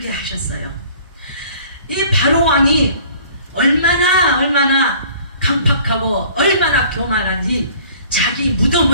하셨어요. 이 바로 왕이 얼마나 강팍하고 얼마나 교만한지 자기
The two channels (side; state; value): both; inverted; correlation -0.51